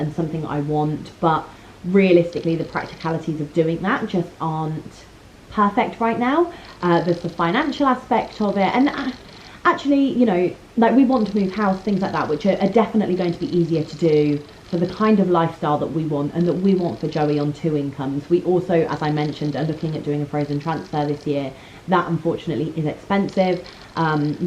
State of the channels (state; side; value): identical; both; correlation 1.00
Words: something I want, but realistically the practicalities of doing that just aren't perfect right now. There's the financial aspect of it, and actually, you know, like we want to move house, things like that, which are definitely going to be easier to do for the kind of lifestyle that we want and that we want for Joey on 2 incomes. We also, as I mentioned, are looking at doing a frozen transfer this year. That unfortunately is expensive.